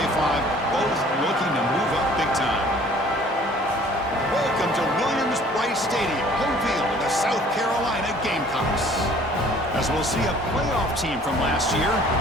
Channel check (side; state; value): both; normal; correlation 0.53